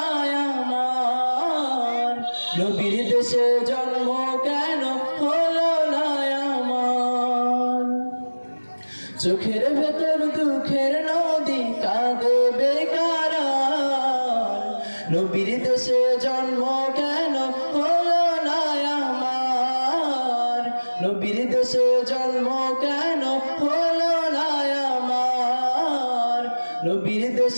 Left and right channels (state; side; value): inverted; both; correlation -1.00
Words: আমার, নবীর দেশে জন্ম কেন হলো না আমার। চোখের ভেতর দুঃখের নদী কাঁদে বেকারা, নবীর দেশে জন্ম কেন হলো না আমার, নবীর দেশে জন্ম কেন হলো না আমার, নবীর